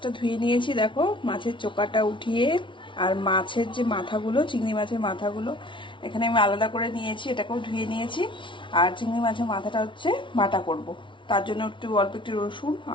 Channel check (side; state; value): right; late; 0.24 ms